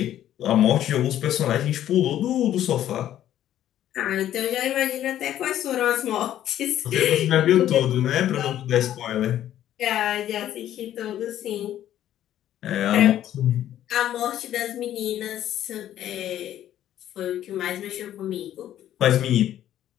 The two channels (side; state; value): right; quieter; 11.8 dB